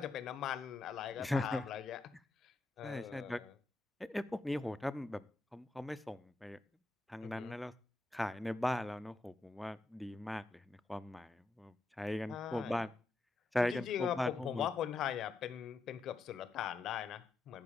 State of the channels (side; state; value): right; quieter; 3.3 dB